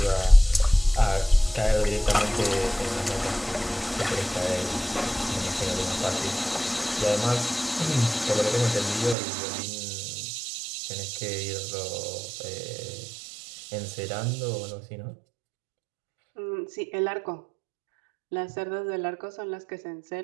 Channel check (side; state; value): left; drops out; at 9.2 s